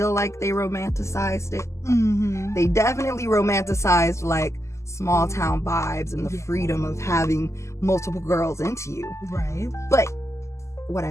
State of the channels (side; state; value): right; late; 0.13 ms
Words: like they romanticized it. They definitely romanticized like small town vibes and the freedom of having multiple girls into you. But what